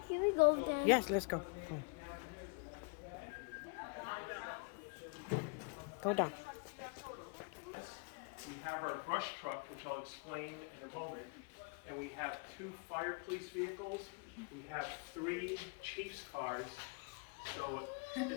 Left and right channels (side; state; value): right; quieter; 32.7 dB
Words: we go there? Yes, let's go. Go down. We have our brush truck, which I'll explain in a moment, and we have 2 fire police vehicles. We have 3 chief's cars, so